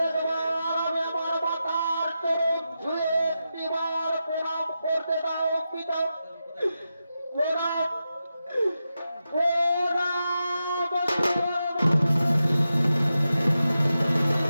আমি আমার মাতার চরণ ছুঁয়ে একটিবার প্রণাম করতে দাও পিতা। প্রণাম প্রণাম প্রণাম।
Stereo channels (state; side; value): inverted; both; correlation -0.90